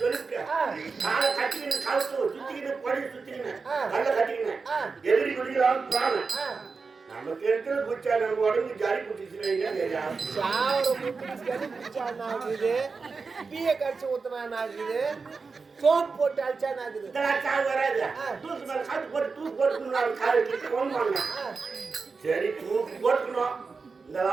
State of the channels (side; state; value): left; quieter; 4.6 dB